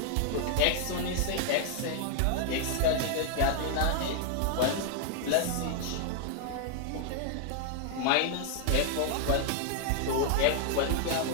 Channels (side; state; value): both; different; correlation 0.00